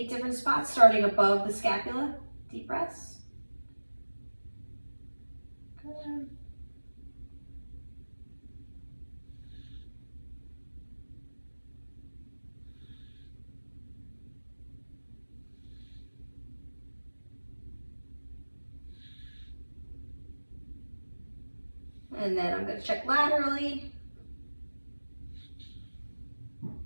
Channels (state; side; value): inverted; both; correlation -1.00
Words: different spots starting above the scapula. Deep breaths. Good. And then I'm going to check laterally.